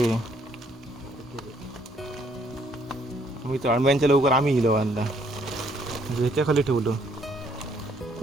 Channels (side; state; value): both; normal; correlation 0.66